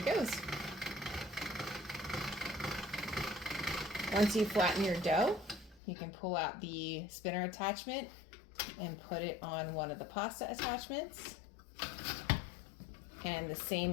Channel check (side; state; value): right; drops out; at 5.8 s